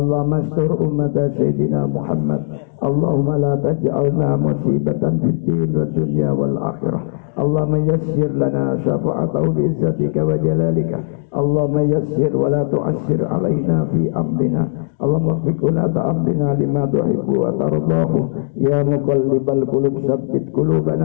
astur ummata Sayyidina Muhammad. Allahumma la taj'alna musibatan fid din wa dunya wal akhirah. Allahumma yassir lana syafa'atahu bi izzatika wa jalalika. Allahumma yassir wa la tu'assir alaina fi amrina. Allahumma fikuna ta'amdina lima tuhibbu wa tardahu. Ya muqallibal qulub sabbit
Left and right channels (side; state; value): right; silent; digital silence